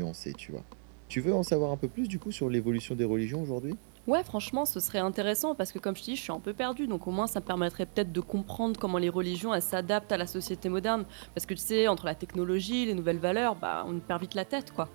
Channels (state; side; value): silent; left; digital silence